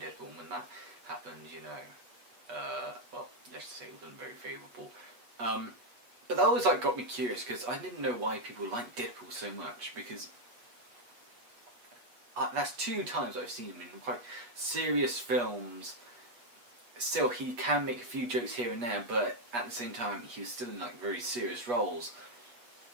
and when that happened, let's just say it wasn't very favourable. But that always got me curious because I didn't know why people liked Deadpool so much, because that's two times I've seen him in quite serious films. Still, he can make a few jokes here and there, but at the same time, he was still in very serious roles.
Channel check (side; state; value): left; late; 8.3 ms